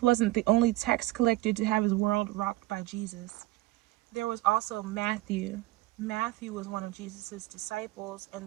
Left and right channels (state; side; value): quieter; left; 18.7 dB